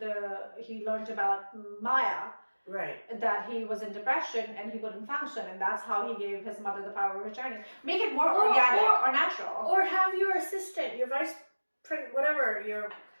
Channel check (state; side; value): inverted; both; correlation -1.00